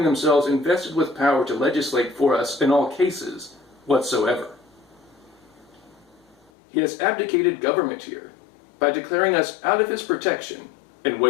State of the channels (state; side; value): drops out; right; at 6.5 s